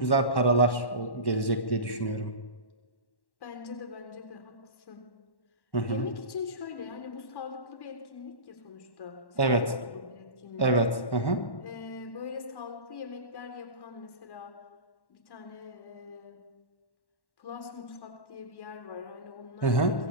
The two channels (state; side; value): late; right; 1.1 ms